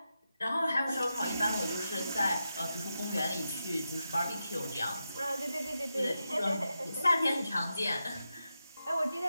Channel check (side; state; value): both; inverted; correlation -0.88